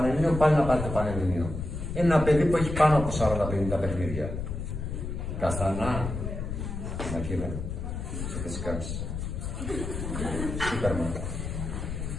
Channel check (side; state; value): left; noise; rumble, 5 dB below the sound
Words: πάλι να πάρει το Πανελλήνιο. Είναι ένα παιδί που έχει πάνω από 40-50 παιχνίδια. Καστανά, Μακίδα, σε θες κάνεις. Σούπερμαν.